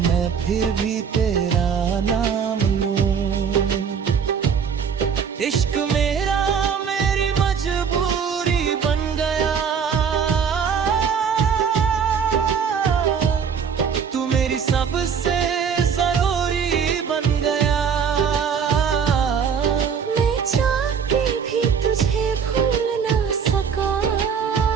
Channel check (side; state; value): left; quieter; 6.8 dB